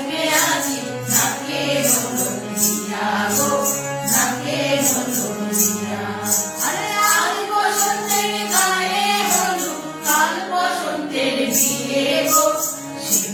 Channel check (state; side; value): identical; both; correlation 1.00